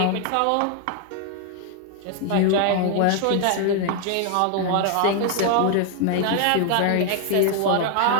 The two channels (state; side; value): different; both; correlation 0.00